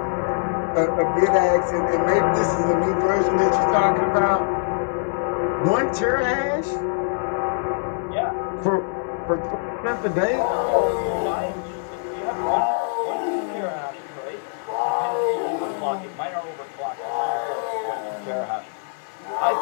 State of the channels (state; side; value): silent; right; digital silence